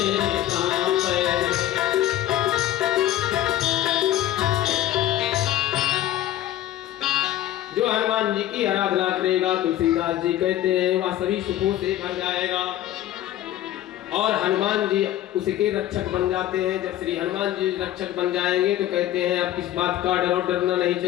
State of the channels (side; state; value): right; quieter; 13.2 dB